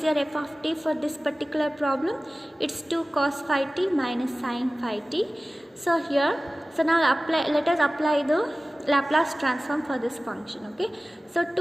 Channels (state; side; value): normal; both; correlation 0.97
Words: your f of t for this particular problem? It's 2 cos phi t minus sin phi t. So here, so now let us apply the Laplace transform for this function. Okay, so